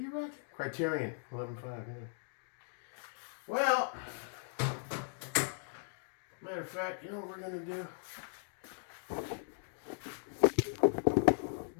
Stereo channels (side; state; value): right; silent; digital silence